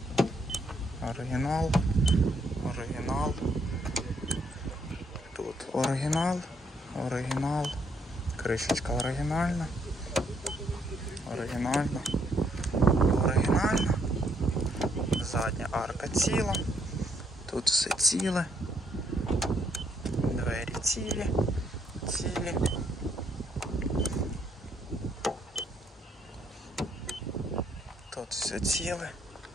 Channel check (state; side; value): normal; both; correlation 0.72